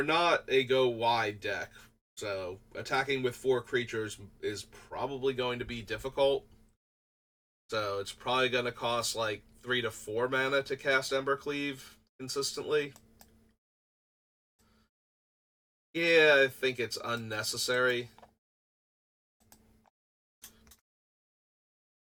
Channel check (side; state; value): both; identical; correlation 1.00